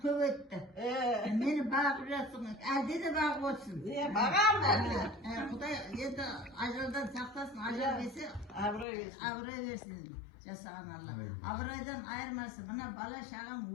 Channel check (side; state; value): right; drops out; at 8.8 s